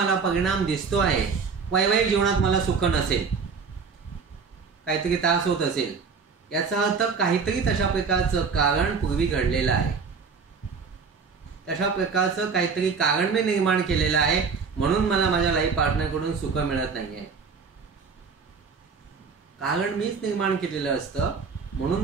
परिणाम दिसतो आहे, वैवाहिक जीवनात मला सुख नसेल, काहीतरी त्रास होत असेल, याचा अर्थ काहीतरी तशा प्रकारचं कारण पूर्वी घडलेलं आहे. तशा प्रकारचं काहीतरी कारण मी निर्माण केलेलं आहे म्हणून मला माझ्या लाईफ पार्टनरकडून सुख मिळत नाहीये. कारण मीच निर्माण केलेलं असतं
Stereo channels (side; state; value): left; quieter; 5.4 dB